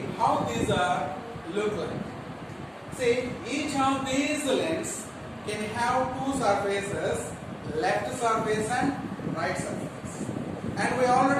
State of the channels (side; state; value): both; identical; correlation 1.00